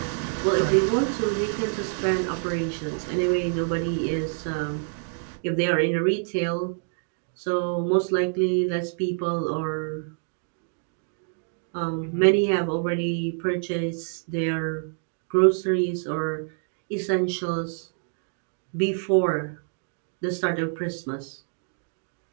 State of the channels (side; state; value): left; silent; 60 dB below the other